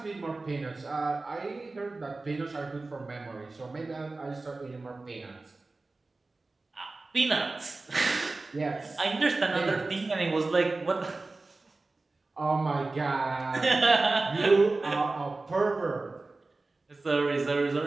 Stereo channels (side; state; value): left; quieter; 3.4 dB